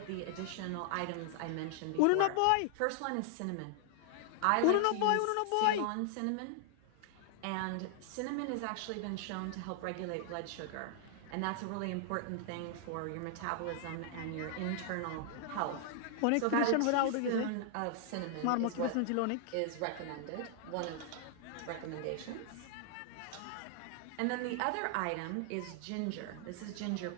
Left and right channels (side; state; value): both; different; correlation -0.01